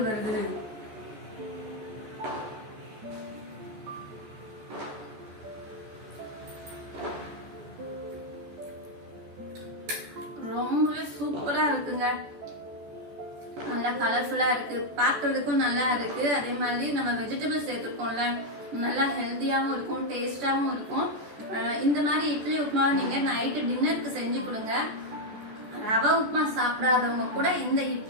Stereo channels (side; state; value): left; late; 14 ms